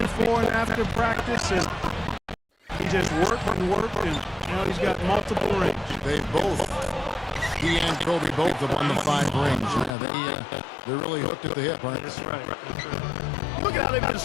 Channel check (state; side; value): drops out; right; at 9.9 s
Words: before and after practice, and he just worked, and now he's got multiple rings. He and Kobe both have won the 5 rings. Yeah, they're really hooked at the hip, aren't they? That's right. Look at how they've been